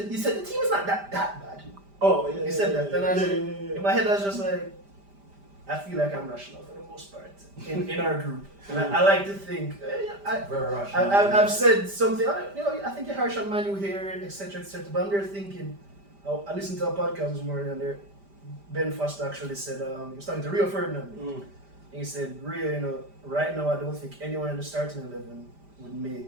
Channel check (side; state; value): left; late; 5.0 ms